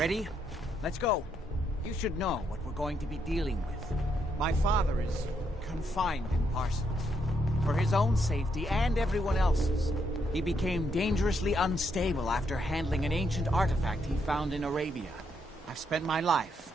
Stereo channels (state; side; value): normal; both; correlation 0.77